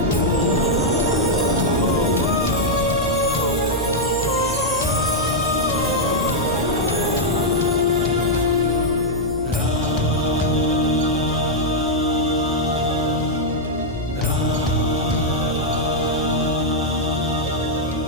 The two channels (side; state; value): right; noise; hum, 11 dB below the sound